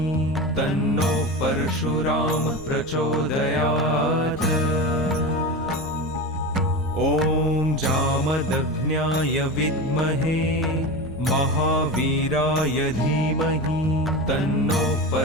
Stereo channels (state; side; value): normal; both; correlation 0.24